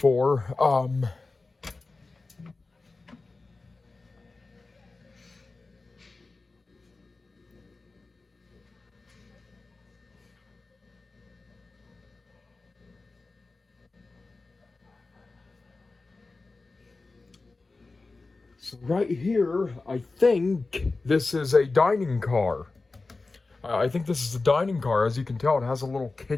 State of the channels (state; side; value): quieter; right; 3.6 dB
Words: So right here, I think this is a dining car. I think this is a dining car. As you can tell, it has a little